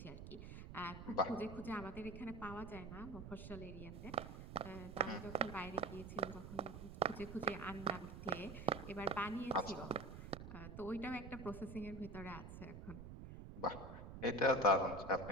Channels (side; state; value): right; noise; rumble, 10 dB below the sound